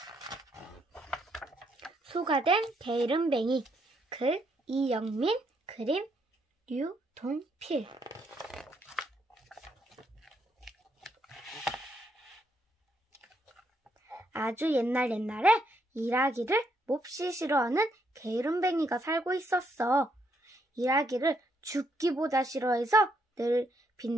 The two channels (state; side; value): normal; both; correlation 0.75